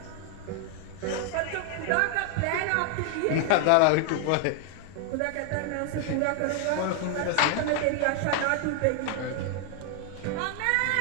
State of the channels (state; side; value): different; both; correlation 0.00